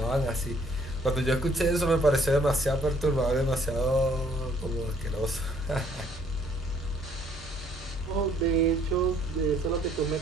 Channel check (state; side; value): normal; both; correlation 0.63